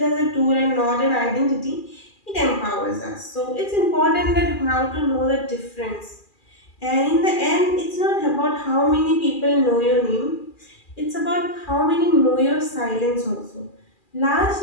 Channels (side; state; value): right; late; 2.4 ms